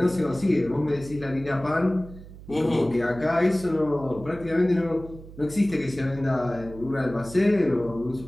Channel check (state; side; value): noise; right; hum, 16 dB below the sound